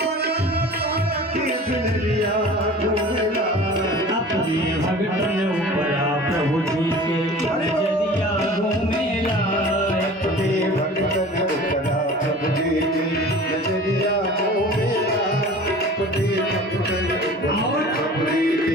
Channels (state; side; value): normal; both; correlation 0.42